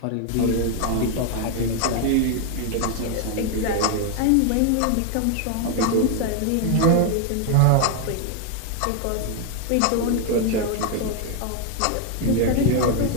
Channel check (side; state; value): both; different; correlation 0.00